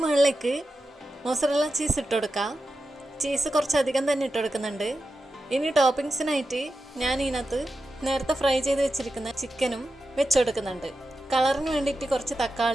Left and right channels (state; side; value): normal; both; correlation 0.90